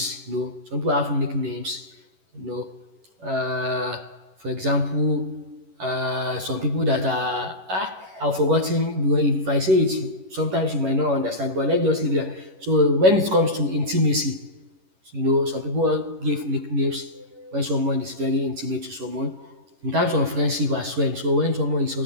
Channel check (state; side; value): late; left; 11 ms